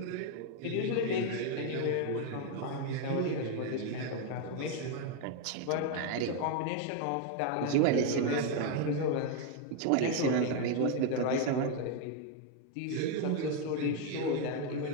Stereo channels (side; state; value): both; different; correlation 0.01